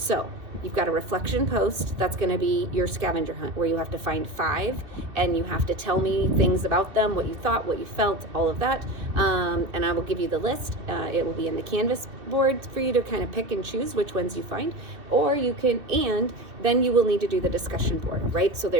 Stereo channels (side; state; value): left; late; 2.6 ms